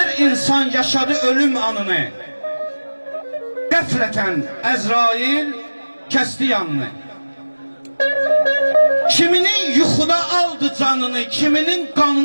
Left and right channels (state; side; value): inverted; both; correlation -1.00